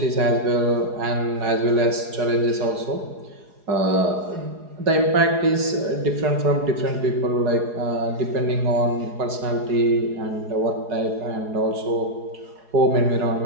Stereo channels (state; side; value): late; left; 4.8 ms